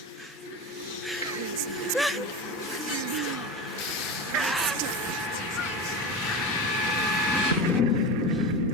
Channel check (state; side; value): normal; both; correlation 0.24